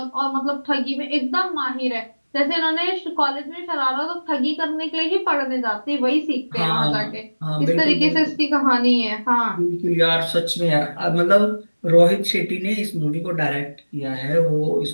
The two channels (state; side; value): inverted; both; correlation -1.00